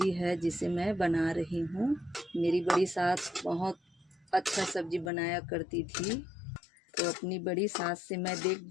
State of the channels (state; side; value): drops out; right; at 5.1 s